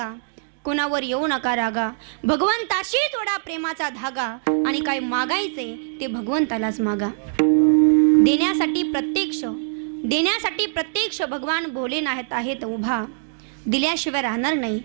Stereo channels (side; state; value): left; silent; digital silence